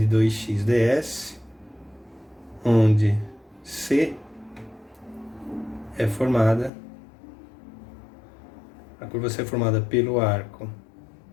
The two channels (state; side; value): drops out; right; at 6.7 s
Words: 2x ds, onde C é formada, a curva C é formada pelo arco